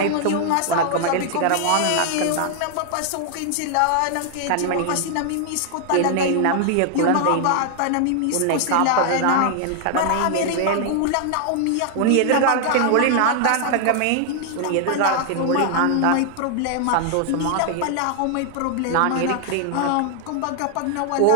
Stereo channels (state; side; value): different; both; correlation 0.00